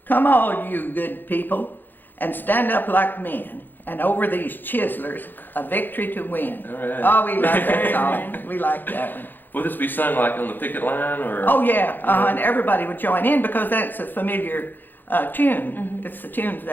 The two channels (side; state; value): right; late; 0.091 ms